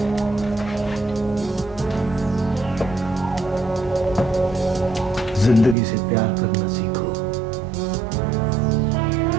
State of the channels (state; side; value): drops out; left; at 5.8 s